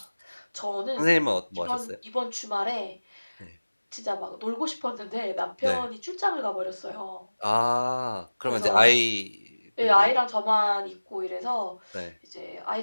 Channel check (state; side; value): inverted; both; correlation -1.00